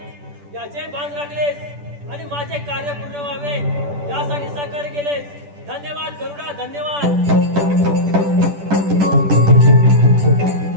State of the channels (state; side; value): late; left; 10 ms